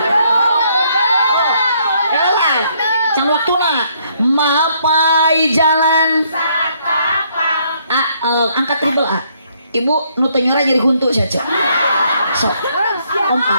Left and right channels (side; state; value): both; inverted; correlation -0.69